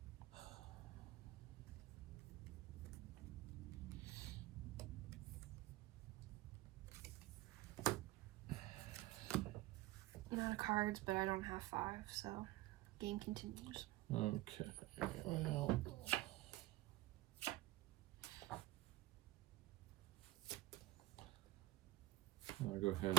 not a cards, but I don't have 5, so game continues. Okay. Well. I'll go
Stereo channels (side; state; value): left; quieter; 17.9 dB